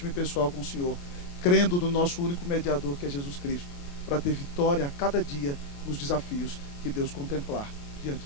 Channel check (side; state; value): right; late; 28 ms